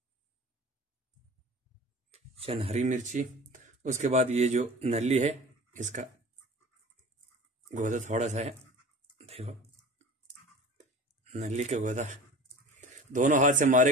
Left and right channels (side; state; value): both; normal; correlation 0.38